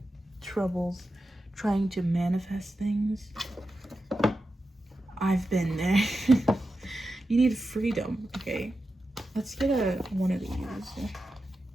troubles trying to manifest things. I've been there. You need freedom, okay? Let's get one of these.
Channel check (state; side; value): normal; both; correlation 0.90